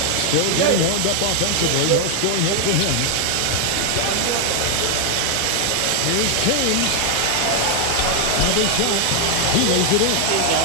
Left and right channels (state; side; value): different; both; correlation 0.00